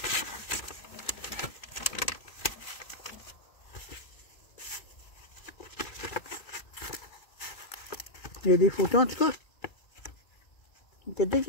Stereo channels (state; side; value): late; right; 2.4 ms